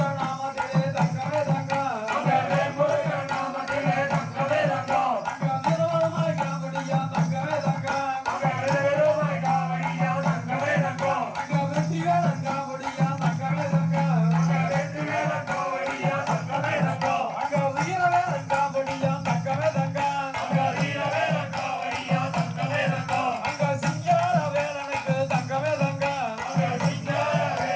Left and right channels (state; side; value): identical; both; correlation 1.00